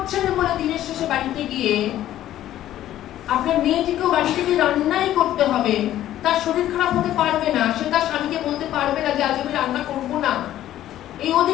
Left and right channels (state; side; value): quieter; right; 12.8 dB